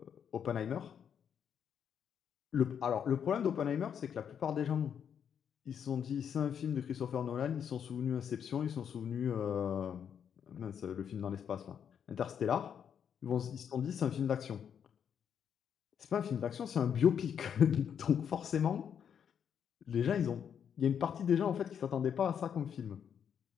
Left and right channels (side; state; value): right; quieter; 8.1 dB